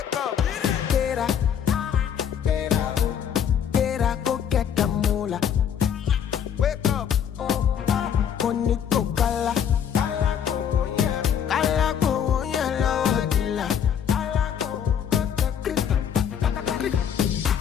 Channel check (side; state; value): right; quieter; 8.5 dB